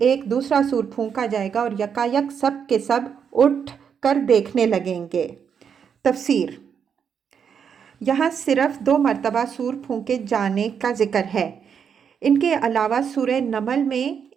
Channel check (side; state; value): left; quieter; 7.3 dB